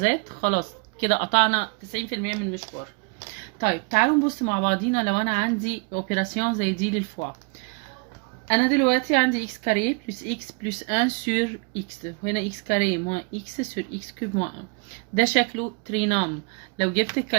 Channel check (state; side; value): quieter; left; 32.2 dB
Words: خلاص كده قطعنا 90% من المشوار. طيب تعالوا نبص مع بعضينا. لو انا عندي اوبيراسيون زي دي للفوا، انا دلوقتي عندي x كاري بلس x بلس 1 سور x، وهنا x كاري موان x سور x كوب موان 1. ده شكله ترينام. لو جبت